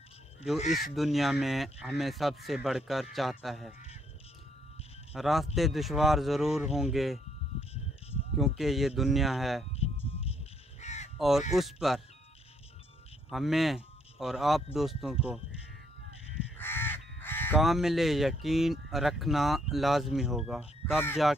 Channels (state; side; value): normal; both; correlation 0.71